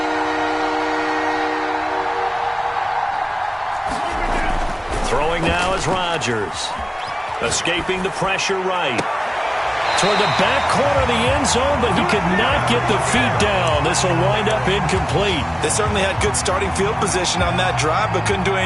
Throwing now is Rodgers. Escaping the pressure right. Toward the back corner of the end zone, but he could not get the feet down. This will wind up incomplete. They certainly had good starting field position on that drive, but couldn't do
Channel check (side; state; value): both; identical; correlation 1.00